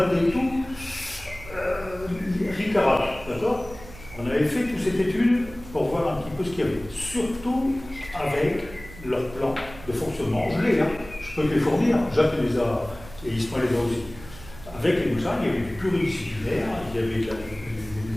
tout, ricarat, d'accord? On avait fait toute cette étude pour voir un petit peu ce qu'il y avait, surtout avec leur plan de fonctionnement. Je l'ai, hein. Je peux te les fournir, Jacques les a, et Ismaël les a aussi. Avec les médecins, il y avait du pluridisciplinaire, il y avait des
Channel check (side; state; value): right; noise; hum, 17 dB below the sound